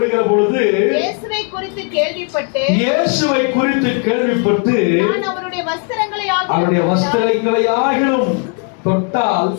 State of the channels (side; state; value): right; quieter; 39.0 dB